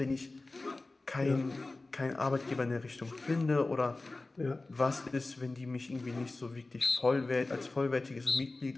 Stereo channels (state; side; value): quieter; right; 3.2 dB